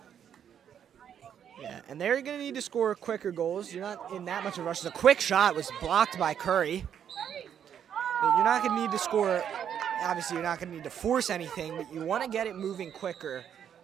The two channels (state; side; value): quieter; left; 8.9 dB